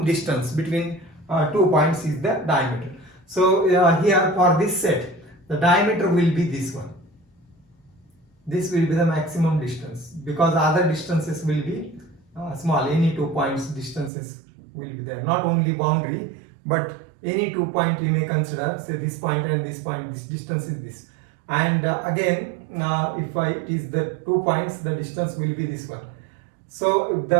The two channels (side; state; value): left; drops out; at 14.1 s